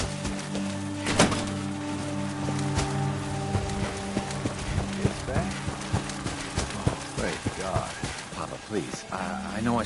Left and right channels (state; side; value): identical; both; correlation 1.00